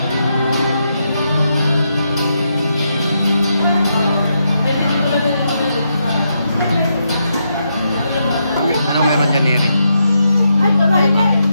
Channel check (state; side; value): inverted; both; correlation -0.81